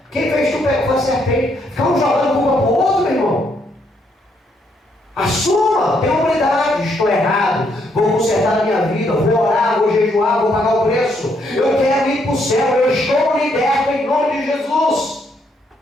quem fez tu pecar? Foi a serpente. Ficamos jogando culpa pro outro, meu irmão. Assuma, tenha humildade. Estou errado, vou consertar a minha vida, vou orar, vou jejuar, vou pagar o preço. Eu quero ir para o céu, eu estou liberto em nome de Jesus.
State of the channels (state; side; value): normal; both; correlation 0.73